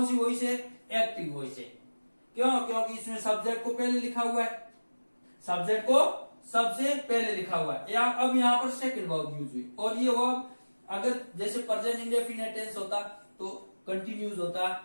सी वॉइस है? एक्टिव वॉइस है। क्यों? क्योंकि इसमें सब्जेक्ट को पहले लिखा हुआ है, सब्जेक्ट को सबसे पहले लिखा हुआ है। अब यहाँ पर सेकंड वर्ब यूज हुई। और ये वर्ब अगर जैसे प्रेजेंट इंडेफिनिट टेंस होता तो कंटिन्यूज होता,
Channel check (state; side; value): inverted; both; correlation -1.00